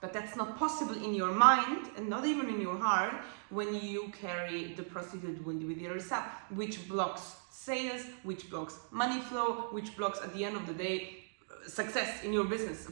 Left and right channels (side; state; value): left; silent; digital silence